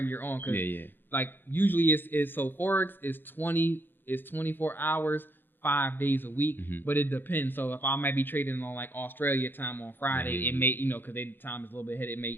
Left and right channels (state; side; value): late; right; 0.097 ms